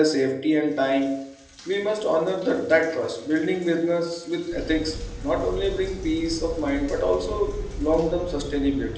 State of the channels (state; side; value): identical; both; correlation 1.00